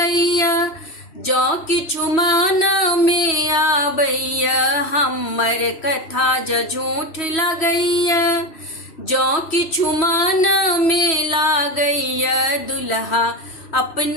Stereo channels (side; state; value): right; late; 3.1 ms